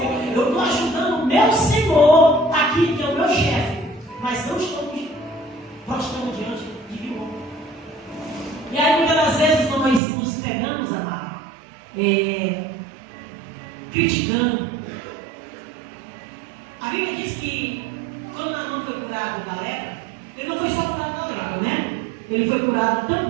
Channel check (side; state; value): left; drops out; at 10.0 s